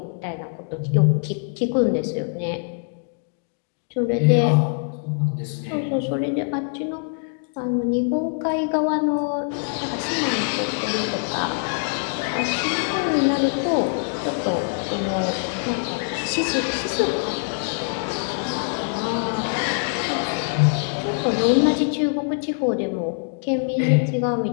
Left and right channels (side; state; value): right; silent; digital silence